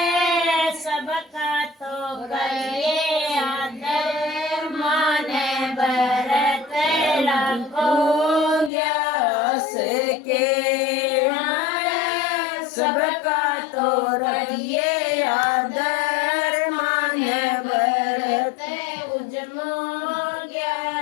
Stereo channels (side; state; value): right; drops out; at 8.7 s